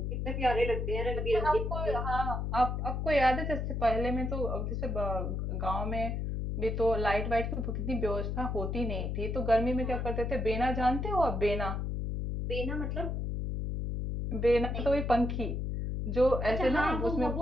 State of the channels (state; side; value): noise; left; hum, 2 dB below the sound